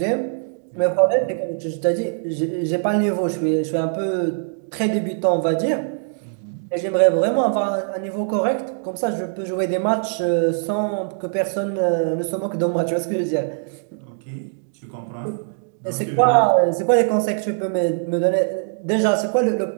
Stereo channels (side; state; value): left; silent; 64 dB below the other